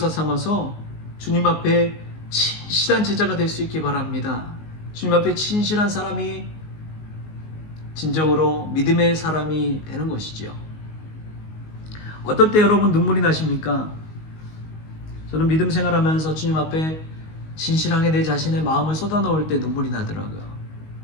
삼아서 주님 앞에 진실한 제자가 될 수 있기 바랍니다. 주님 앞에 진실한 사람이 진정으로 믿음의 사람이 되는 것이지요. 어떨 때 여러분 눈물이 나십니까? 저는 믿음 생활하면서 주님 앞에 진실하게 내 자신의 마음을 쏟아놓을 때 눈물이 나더라고요.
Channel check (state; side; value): late; right; 19 ms